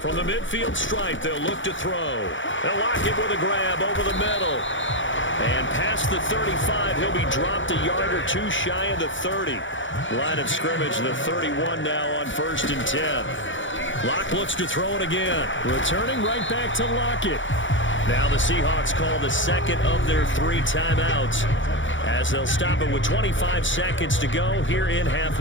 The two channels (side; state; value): right; late; 0.56 ms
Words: the midfield stripe, they'll look to throw. They'll lock it with a grab over the middle. And past the 35, he'll be dropped a yard or two shy of the 30. Line of scrimmage, the 31 now on 1st and 10. Locke looks to throw it again. Returning right back to Lockett. Now the Seahawks call the 2nd of their 3 timeouts as they'll stop it with 25 seconds to go here in half